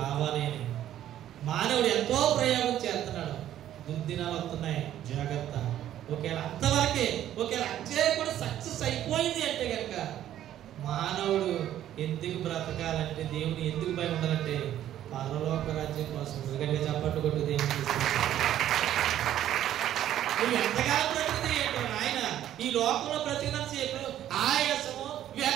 రావాలి అని మానవుడు ఎంతో ప్రయోగం చేస్తున్నాడు. దుర్దినాలు వస్తున్నాయి, జాగ్రత్త. ఒకవేళ అంతవరకే, ఒకవేళ అంతే కూడా సక్సెస్ అయిపోయింది అంటే కనుక మానవుడు ఎందుకు బ్రతకాలంటే, దేవుడు ఎందుకు భయం ఉండాలంటే పరలోక రాజ్యం కోసం. ఎందుకంటే చప్పట్టు కొట్టు దేవుడు నువ్వు ఎంతకాలం బ్రతికితే ఏంటో ఆయన ఈ లోకంలో బ్రతికినంత సేపు ఆయాసము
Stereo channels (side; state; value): left; quieter; 11.9 dB